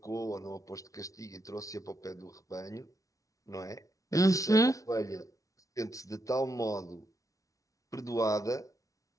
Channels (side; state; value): right; late; 0.17 ms